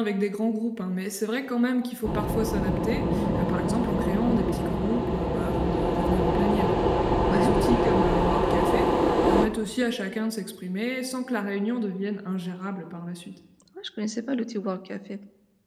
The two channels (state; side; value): identical; both; correlation 1.00